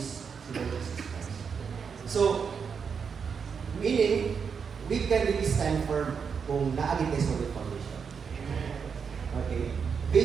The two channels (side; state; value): left; quieter; 6.3 dB